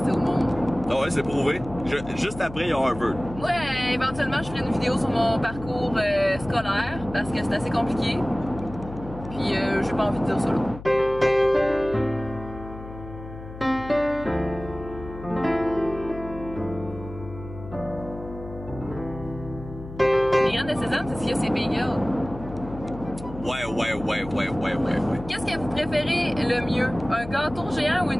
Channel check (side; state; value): left; noise; hum, 13 dB below the sound